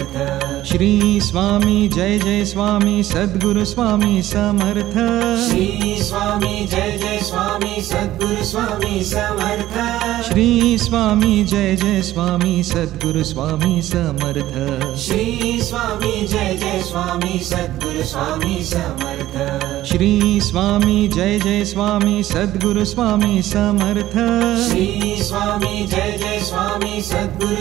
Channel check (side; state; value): left; quieter; 14.6 dB